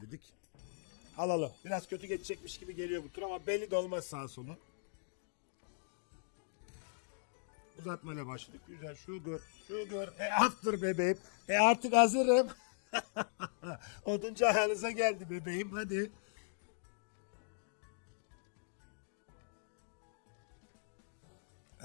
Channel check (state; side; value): silent; right; digital silence